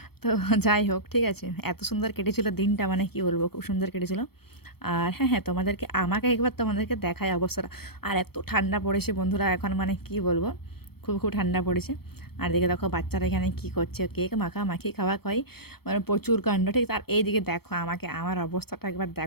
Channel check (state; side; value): late; right; 0.96 ms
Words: তো যাই হোক, ঠিক আছে, এত সুন্দর কেটেছিল দিনটা, মানে কি বলবো, খুব সুন্দর কেটেছিল। আর হ্যাঁ হ্যাঁ তোমাদেরকে আমাকে একবার তোমাদেরকে দেখায় অবস্থাটা। আর এত ঠান্ডা পড়েছে বন্ধুরা এখন, মানে কি বলবো, খুব খুব ঠান্ডা পড়েছে। আর দিকে দেখো বাচ্চারা এখানে কী করছে, কেক মাখামাখি খাওয়া খাওয়াই, মানে প্রচুর কাণ্ড, ঠিক। আর এইদিকে দেখো আমাকে, আমার অবস্থাটা একবার